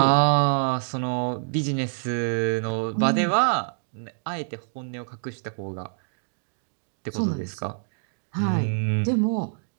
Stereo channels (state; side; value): silent; left; digital silence